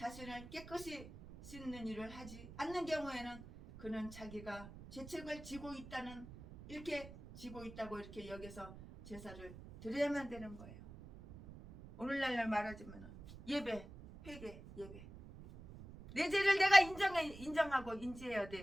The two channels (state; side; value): noise; right; rumble, 15 dB below the sound